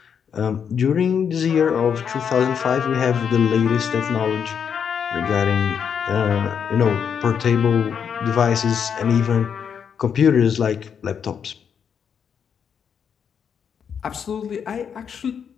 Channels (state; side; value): quieter; right; 7.4 dB